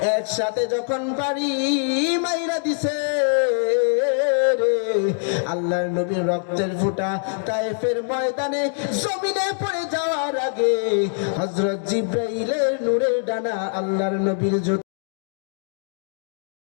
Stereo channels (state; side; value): silent; right; 63 dB below the other